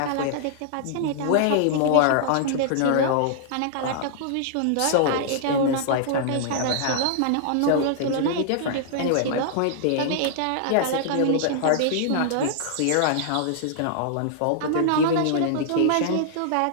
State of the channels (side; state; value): both; different; correlation -0.01